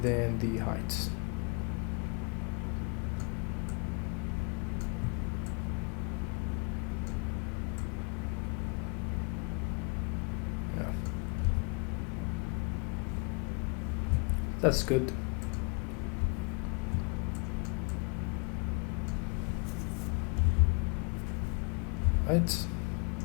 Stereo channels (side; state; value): right; quieter; 31.5 dB